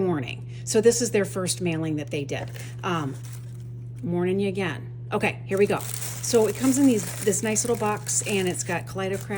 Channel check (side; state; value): both; identical; correlation 1.00